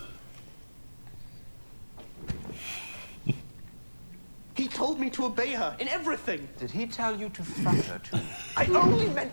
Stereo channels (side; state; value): both; inverted; correlation -1.00